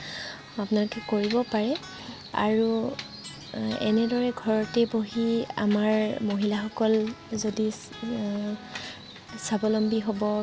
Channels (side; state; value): both; identical; correlation 1.00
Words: আপোনালোকে কৰিব পাৰে আৰু এনেদৰে ঘৰতে বহি আমাৰ মহিলাসকল যদি স্বাৱলম্বী হ'ব